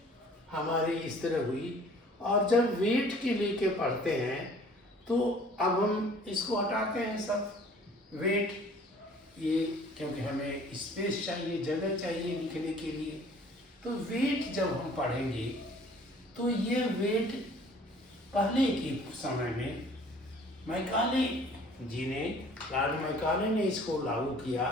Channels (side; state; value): both; normal; correlation 0.52